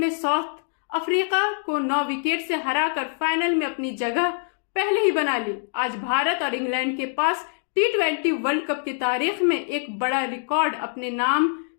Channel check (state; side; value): silent; right; digital silence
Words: साउथ अफ्रीका को 9 विकेट से हराकर फाइनल में अपनी जगह पहले ही बना ली। आज भारत और इंग्लैंड के पास T20 वर्ल्ड कप की तारीख में एक बड़ा रिकॉर्ड अपने नाम